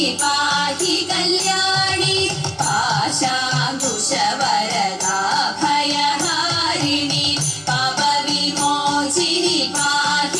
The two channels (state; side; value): identical; both; correlation 1.00